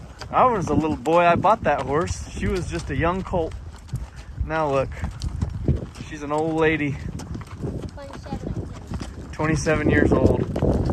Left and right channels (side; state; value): both; identical; correlation 1.00